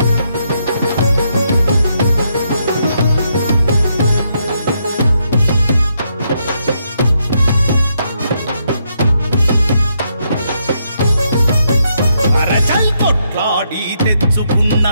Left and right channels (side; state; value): both; inverted; correlation -0.77